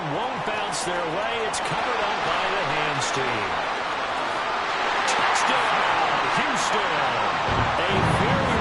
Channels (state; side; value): identical; both; correlation 1.00